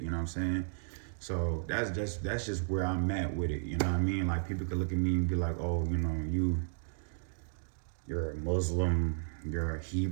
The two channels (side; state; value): left; silent; digital silence